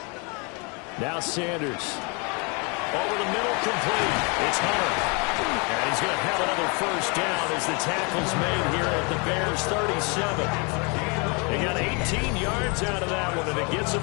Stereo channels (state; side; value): quieter; right; 32.2 dB